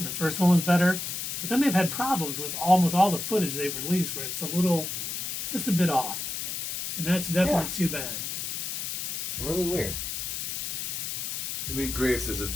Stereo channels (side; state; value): left; noise; hiss, 4 dB below the sound